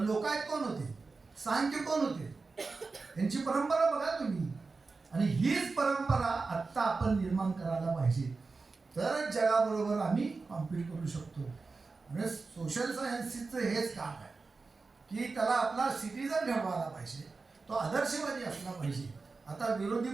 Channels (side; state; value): left; quieter; 4.1 dB